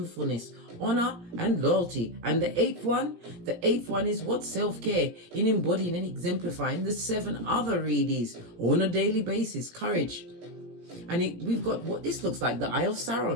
honor, and loyalty. And the eighth one is what? Self-care, in embodying and exemplifying the 7 other readies on a daily basis. Courage. And we've got what this looks like, the Eye of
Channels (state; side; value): late; left; 17 ms